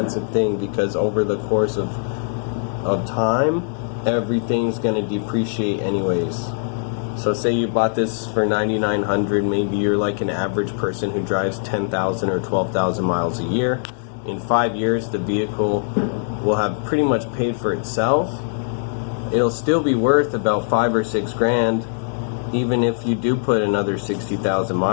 thing, because over the course of time, everything's going to depreciate anyways. So say you bought this for $9,900, maybe you're like an average person who drives 10,000 or 12,000 miles a year. In 5 years, the vehicle will have pretty much paid for itself. It'll still be worth about 5 or 6 grand, even if you do put another 60,000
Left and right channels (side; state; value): right; silent; digital silence